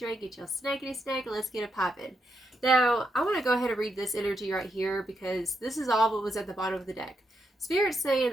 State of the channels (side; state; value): both; normal; correlation 0.82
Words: get your snackity snack, and let's get it popping. Now, I want to go ahead and read this energy right here because this is all what was at the bottom of the deck. Spirit's saying